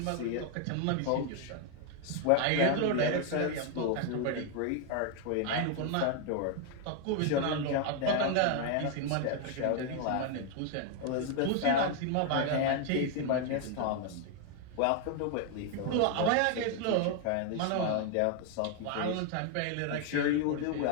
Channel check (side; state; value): both; different; correlation 0.00